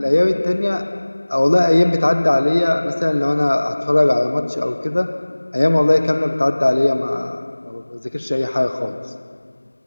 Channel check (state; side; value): inverted; both; correlation -1.00